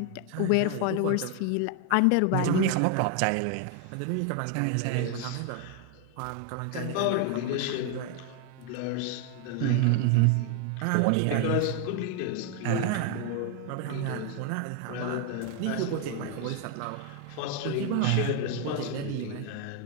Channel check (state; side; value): different; both; correlation 0.01